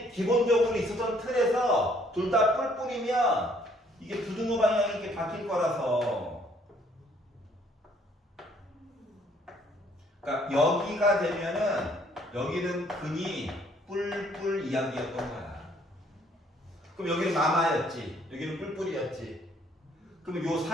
있었던 틀에서 둘 다 뿔뿔이면 이게 부등호 방향이 이렇게 바뀔 거라서. 그러니까 여기가 되면은 여기는 근이 뿔뿔 이야기였던 거야. 그럼 여기는 마마였지. 여기는 뿔뿔이었지. 그럼 요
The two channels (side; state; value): both; normal; correlation 0.63